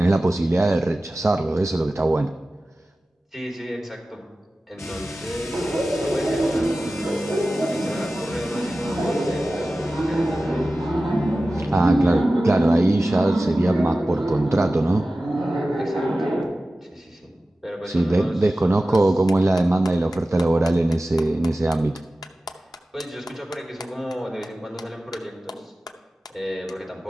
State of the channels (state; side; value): normal; both; correlation 0.95